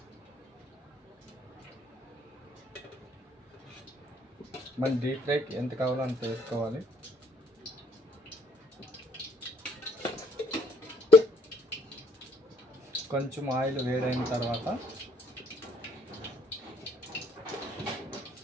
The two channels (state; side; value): normal; both; correlation 0.65